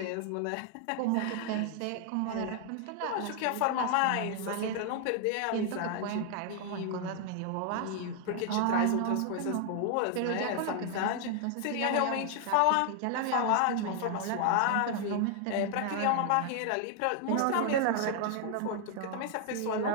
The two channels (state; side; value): different; both; correlation 0.00